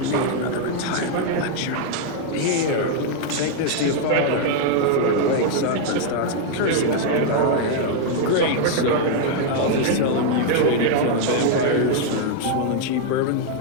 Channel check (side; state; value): both; different; correlation 0.00